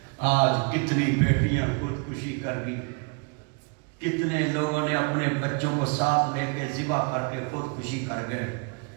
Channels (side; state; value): left; quieter; 34.4 dB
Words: آج کتنی بیٹیاں خودکشی کر گئی کتنے لوگوں نے اپنے بچوں کو ساتھ لے کے ذبح کر کے خودکشی کر گئے